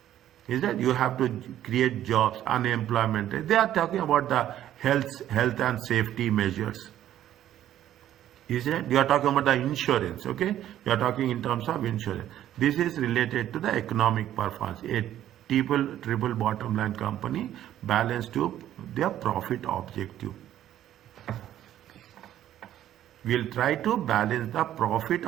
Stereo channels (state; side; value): quieter; left; 11.9 dB